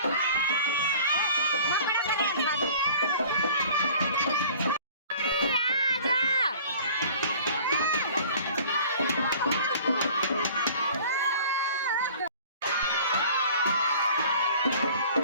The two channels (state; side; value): inverted; both; correlation -0.48